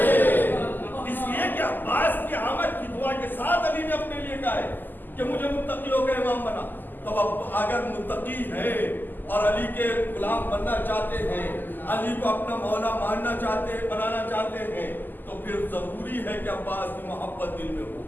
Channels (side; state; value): right; late; 0.089 ms